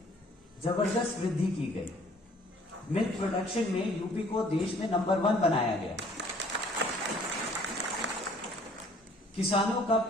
जबरदस्त वृद्धि की गई। मिल्क प्रोडक्शन में यूपी को देश में नंबर 1 बनाया गया। किसानों का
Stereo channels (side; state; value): both; normal; correlation 0.57